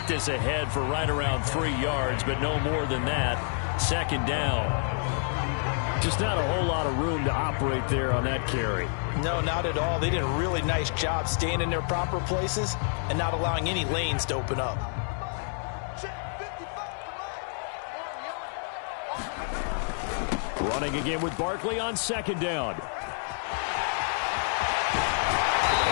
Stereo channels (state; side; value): silent; right; 59 dB below the other